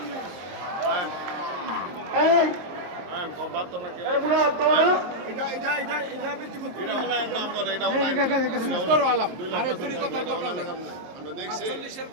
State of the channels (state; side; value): late; left; 22 ms